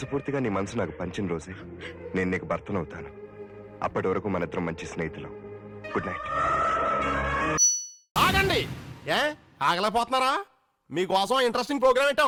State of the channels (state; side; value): identical; both; correlation 1.00